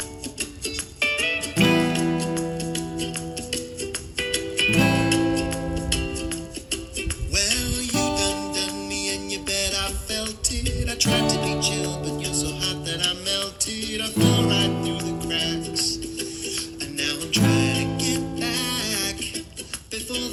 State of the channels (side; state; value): both; identical; correlation 1.00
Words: I tried to be chill, but you're so hot that I melted. I fell right through the cracks, and now I'm trying to get back before